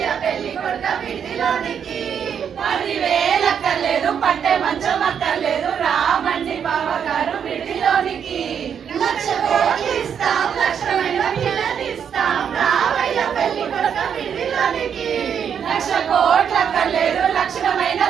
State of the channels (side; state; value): left; quieter; 7.8 dB